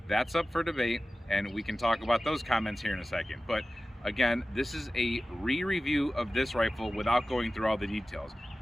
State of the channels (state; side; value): normal; both; correlation 0.96